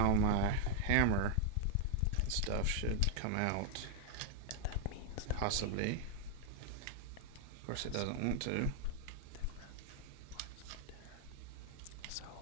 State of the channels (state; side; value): different; both; correlation 0.00